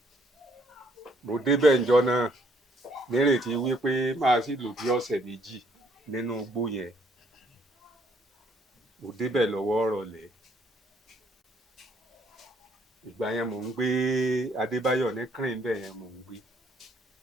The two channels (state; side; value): normal; both; correlation 0.67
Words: mo débẹ̀ ńjọ́ náà nírètí wípé máa sì lò bí ọ̀sẹ̀ méjì nínú igbó yẹn mo débẹ̀ lọ́wọ́ ọ̀rọ̀lẹ́ ìgbà yẹn mò ń gbé Adébáyọ̀ ní kírìn bẹ́ẹ̀ yẹn mò ń gbé